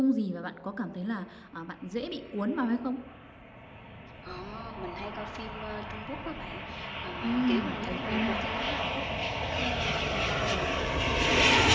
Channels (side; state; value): both; identical; correlation 1.00